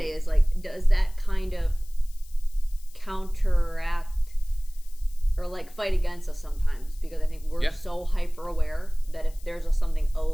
me. Is like, does that kind of counteract or like fight against us sometimes? Because I think we're Yeah. so hyper aware that if there's something a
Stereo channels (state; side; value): noise; left; hiss, 25 dB below the sound